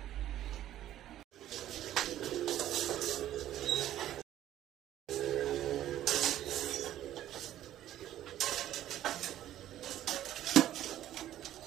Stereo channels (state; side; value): quieter; left; 12.6 dB